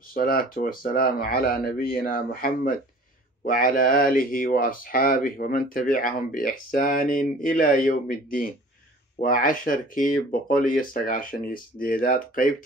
والسلام على نبينا محمد وعلى آله وأصحابه ومن تبعهم بإحسان إلى يوم الدين. وعشركي بقولي السقاشني سديدات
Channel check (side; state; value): both; normal; correlation 0.48